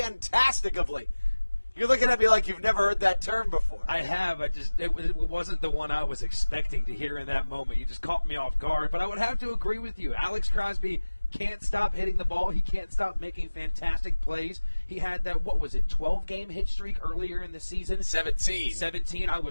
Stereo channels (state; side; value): inverted; both; correlation -1.00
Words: of late. You're looking at me like you've never heard that term before. I have. It wasn't the one I was expecting to hear in that moment. You just caught me off guard. But I would have to agree with you. Alex Crosby can't stop hitting the ball. He can't stop making fantastic plays. He had that, 12-game hit streak earlier in the season? 17. 17. I